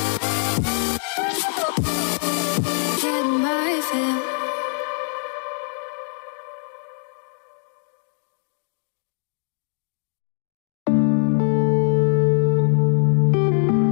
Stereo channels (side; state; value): right; silent; 63 dB below the other